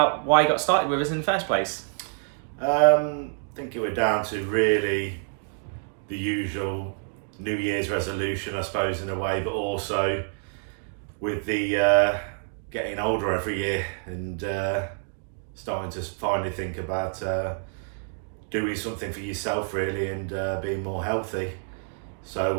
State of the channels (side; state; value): left; silent; digital silence